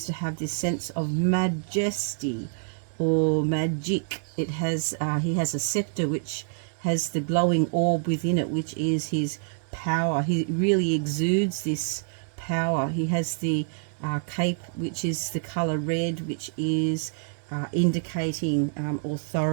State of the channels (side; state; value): left; silent; 60 dB below the other